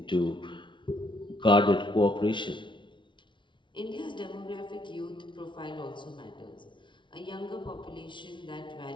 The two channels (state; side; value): late; right; 0.24 ms